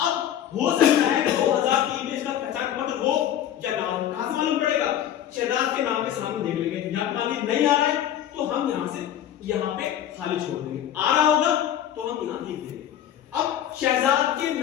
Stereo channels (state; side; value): quieter; right; 10.8 dB